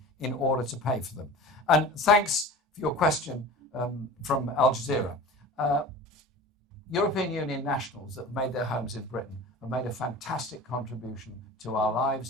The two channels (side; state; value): both; normal; correlation 0.36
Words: in order to pay for them. And thanks for your question from Al Jazeera. European Union nationals that have made their homes in Britain have made a fantastic contribution to our